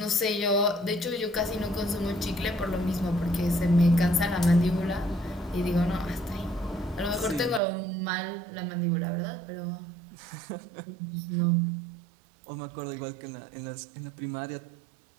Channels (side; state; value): left; drops out; at 7.6 s